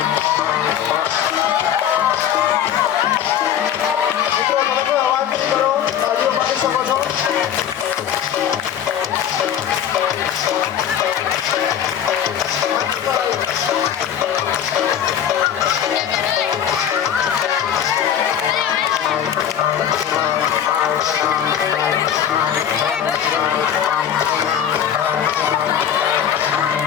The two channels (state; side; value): quieter; right; 9.4 dB